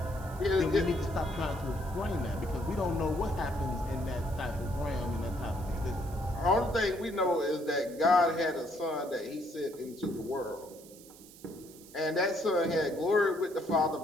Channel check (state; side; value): noise; right; hiss, 21 dB below the sound